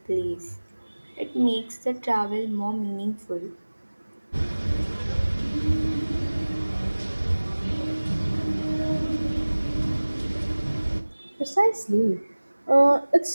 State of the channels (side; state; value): both; inverted; correlation -1.00